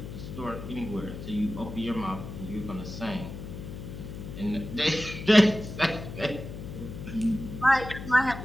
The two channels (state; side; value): noise; left; hum, 9 dB below the sound